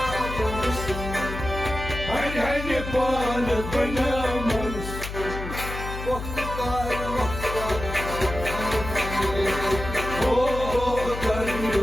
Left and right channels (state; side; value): noise; left; hum, 7 dB below the sound